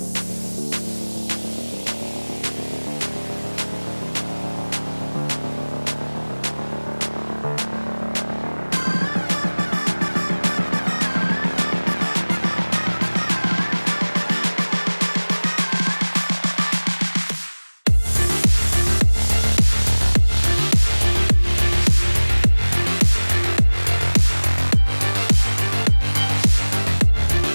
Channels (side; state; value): both; inverted; correlation -1.00